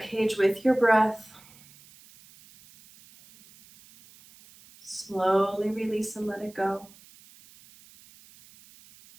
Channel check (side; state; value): right; noise; hiss, 25 dB below the sound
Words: cage with your breath. Slowly release and let it go.